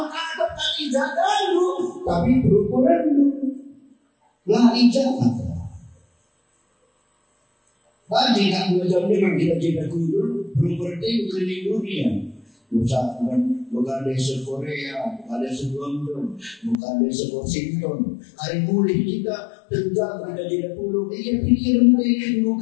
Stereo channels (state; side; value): drops out; right; at 16.8 s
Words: kali jaga lu, tapi berukuran lu lah ijazah. Bagi tak belajar memang kita jaga kudur, berukuran itu keliling dunia. Bukan dari Korea, bukan dari London, bukan dari Washington. Hari mulai kita tentang kita tidak perlu pikiran dari